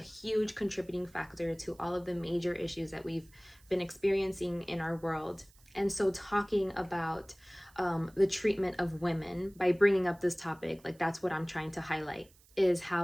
contributing factor to all of the major issues that we've been experiencing in our world. And so talking about the treatment of women by bringing up this topic, like that's what I'm trying to highlight, is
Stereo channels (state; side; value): noise; right; hiss, 28 dB below the sound